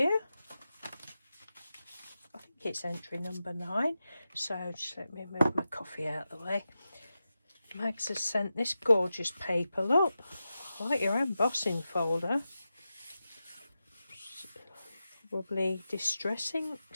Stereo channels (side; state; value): both; inverted; correlation -0.92